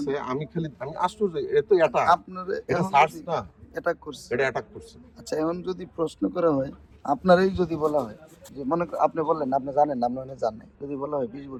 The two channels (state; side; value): identical; both; correlation 1.00